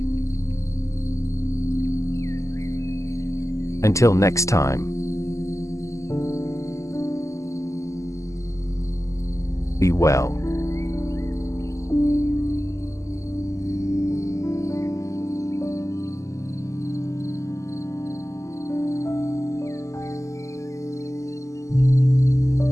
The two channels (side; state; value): right; late; 0.15 ms